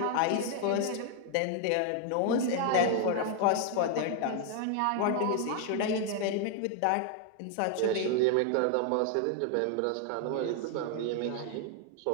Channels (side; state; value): both; different; correlation 0.00